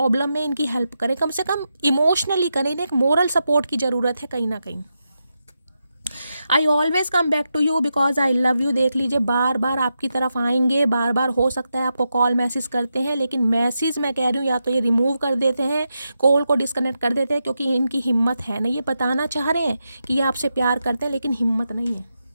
में इनकी हेल्प करें, कम से कम इमोशनली करें। इन्हें एक मोरल सपोर्ट की ज़रूरत है कहीं ना कहीं। I always come back to you because I love you, देख लीजिए बार बार आपकी तरफ आएंगे, बार बार हो सकता है आपको कॉल मैसेज करते हैं, लेकिन मैसेज मैं कह रही हूँ या तो ये रिमूव कर देते हैं, कॉल को डिस्कनेक्ट कर देते हैं, क्योंकि इनकी हिम्मत है नहीं। ये बताना चाह रहे हैं कि ये आपसे प्यार करते हैं, लेकिन हिम्मत नहीं है।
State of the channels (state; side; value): inverted; both; correlation -0.86